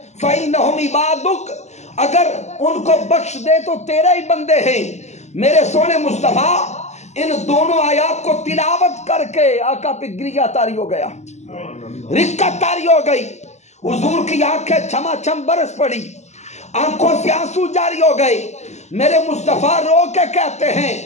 فَإِنَّهُمْ عِبَادُكَ، اگر ان کو بخش دے تو تیرے ہی بندے ہیں۔ میرے سونے مصطفیٰ ان دونوں آیات کو تلاوت کر کے آقا پہ گریہ تاری ہو گیا، رقت تاری ہو گئی، حضور کی آنکھیں چھما چھم برس پڑی، آنکھوں سے آنسو جاری ہو گئے۔ میرے مصطفیٰ رو کے کہتے ہیں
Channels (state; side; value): late; right; 0.33 ms